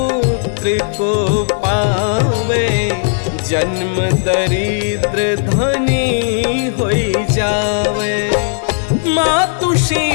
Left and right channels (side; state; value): right; silent; 66 dB below the other